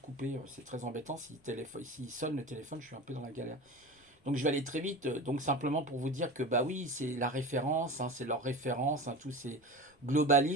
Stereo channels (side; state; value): both; normal; correlation 0.32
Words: C'est très embêtant. S'il sonne le téléphone, je suis un peu dans la galère. Donc je vais aller très vite. Donc simplement pour vous dire que bah oui, c'est la référence, hein, c'est leur référence. Hein, tous ces